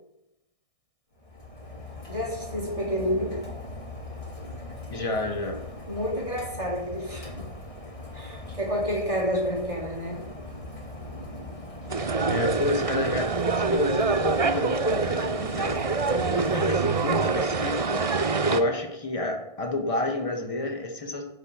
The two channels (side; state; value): right; late; 1.6 ms